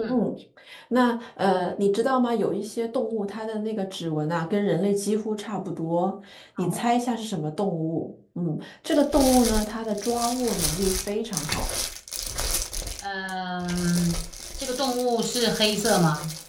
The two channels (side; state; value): both; identical; correlation 1.00